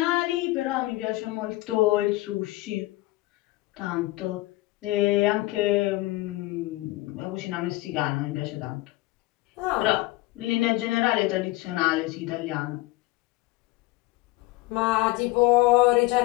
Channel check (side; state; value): right; quieter; 19.3 dB